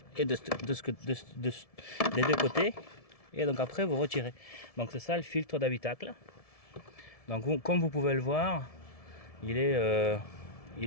et des deux côtés, et donc après vous retirez. Donc c'est ça le filtre d'habitacle. Donc comme vous pouvez le voir, il est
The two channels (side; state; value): right; late; 1.7 ms